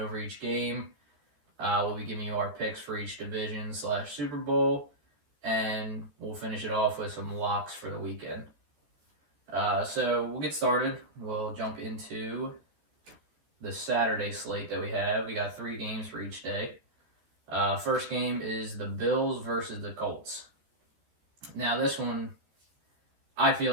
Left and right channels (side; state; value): left; late; 14 ms